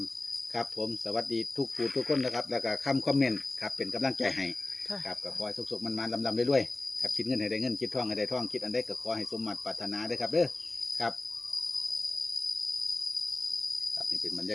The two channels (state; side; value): quieter; right; 3.0 dB